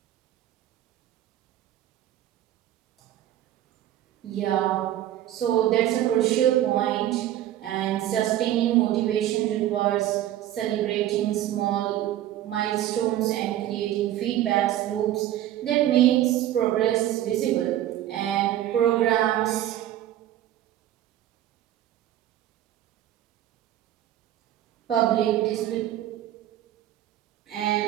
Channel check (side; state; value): left; quieter; 12.8 dB